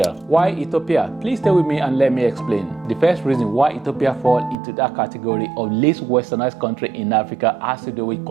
Why Ethiopia? Please stay with me and let me explain. The first reason why Ethiopia falls into that category of least westernized country in Africa has to do with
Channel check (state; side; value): drops out; left; at 4.5 s